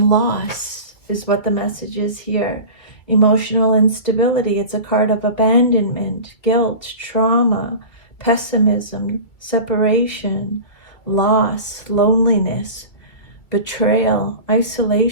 loss is what the message is here. Emotional instability. It's a card of abandonment, guilt, trauma, pessimism, separation, loss, loneliness, betrayal,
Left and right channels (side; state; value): right; late; 2.3 ms